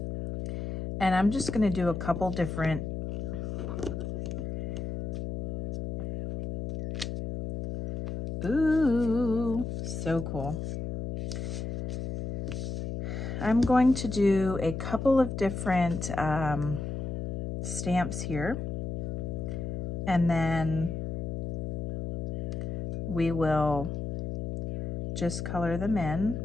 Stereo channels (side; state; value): left; noise; hum, 3 dB below the sound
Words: And I'm just going to do a couple different Ooh, so cool. I'm going to do a couple of different stamps here, and then we will just color them in